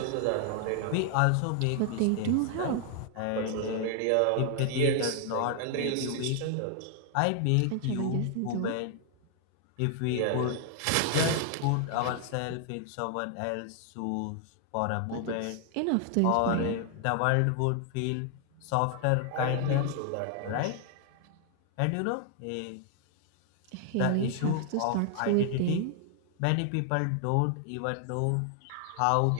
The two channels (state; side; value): different; both; correlation 0.00